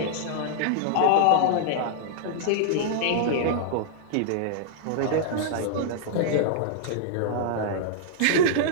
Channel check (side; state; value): both; different; correlation -0.02